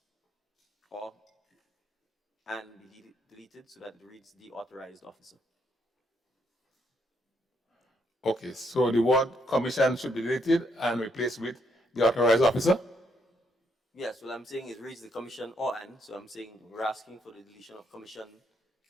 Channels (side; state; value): both; normal; correlation 0.74